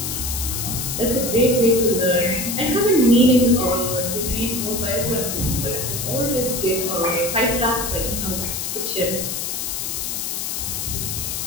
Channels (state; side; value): noise; left; hiss, 3 dB below the sound